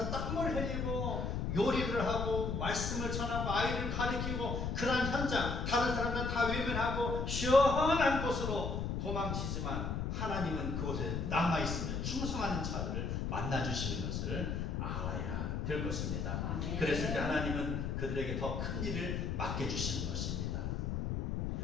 땀을 흘리고 요리를 하고 말씀을 전하고 아이를 가르치고 그런 현장, 다른 사람들은 다 외면하고 시원한 곳으로 도망치지만 하나님은 그곳에 남아있으며 충성하는 자들을 만나주시는 것을 알아야 될 것입니다. 아멘. 그랬을 때 하나님은 그들에게 더 큰 일을 맡겨주시는 것입니다.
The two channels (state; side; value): noise; left; rumble, 1 dB below the sound